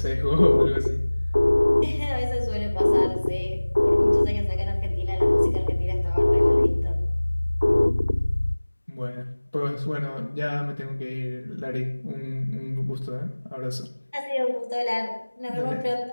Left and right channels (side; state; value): both; inverted; correlation -1.00